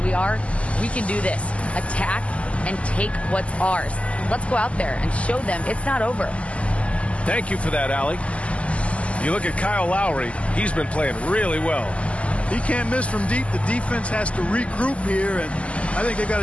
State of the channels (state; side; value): late; right; 0.062 ms